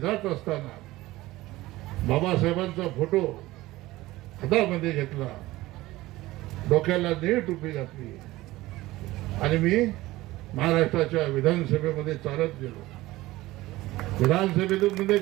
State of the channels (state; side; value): quieter; left; 18.0 dB